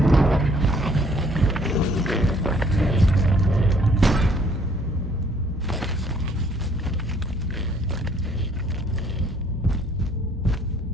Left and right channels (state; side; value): normal; both; correlation 0.62